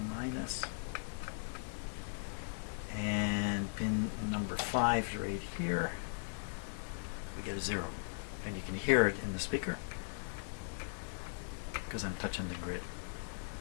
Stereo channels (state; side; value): silent; right; digital silence